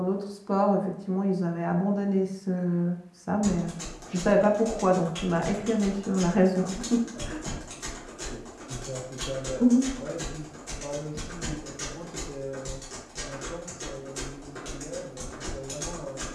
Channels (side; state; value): both; identical; correlation 1.00